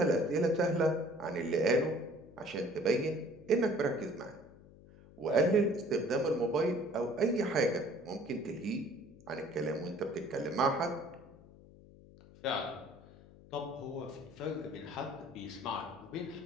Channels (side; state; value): left; noise; hum, 21 dB below the sound